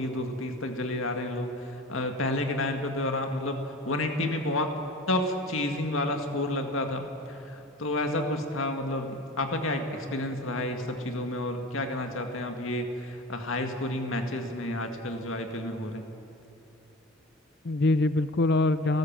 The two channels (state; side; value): normal; both; correlation 0.36